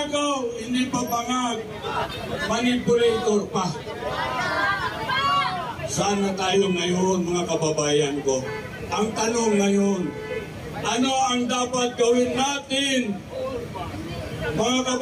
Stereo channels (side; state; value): both; identical; correlation 1.00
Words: hindi pa bangag, manipulator pa. Sana tayo ngayon, mga kababayan ko. Ang tanong ngayon, ano ang dapat gawin natin, mga